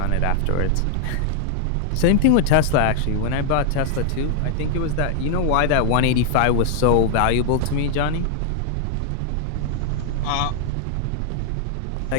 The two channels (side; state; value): both; different; correlation 0.00